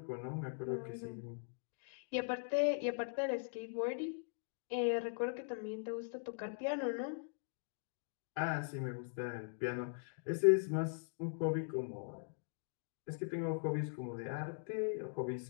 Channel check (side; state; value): right; silent; digital silence